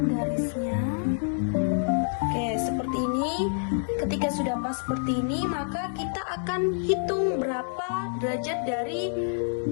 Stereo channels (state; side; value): silent; right; digital silence